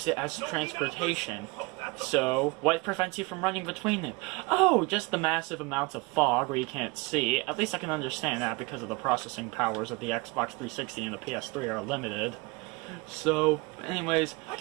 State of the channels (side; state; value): left; quieter; 25.9 dB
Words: it as transportation. So, what prevents you from running between it? Oh, just the massive amounts of fog where you can't see. At least I can understand that because of the processing powers of the Xbox 360 and the PS3 are limited. So, anyways,